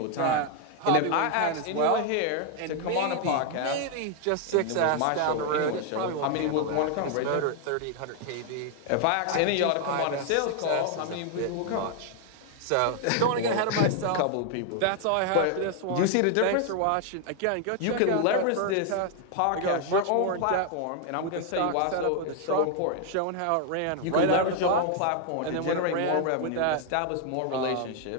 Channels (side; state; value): both; different; correlation 0.00